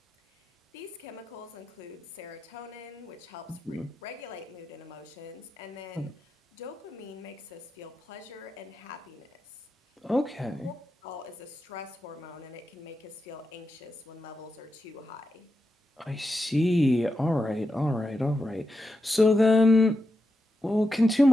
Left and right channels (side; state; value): both; normal; correlation 0.87